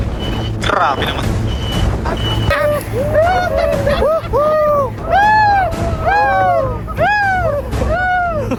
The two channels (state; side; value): identical; both; correlation 1.00